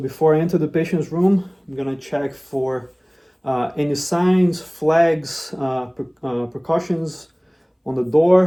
I enter the patient's room, I'm gonna check for any signs, flags, precautions on the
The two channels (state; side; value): identical; both; correlation 1.00